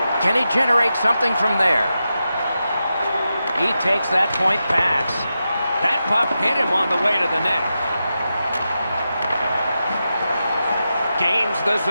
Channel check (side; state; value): both; inverted; correlation -0.89